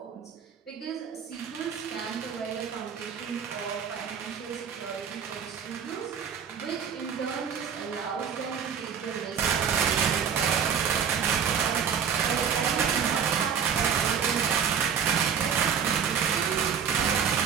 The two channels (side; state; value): left; quieter; 7.4 dB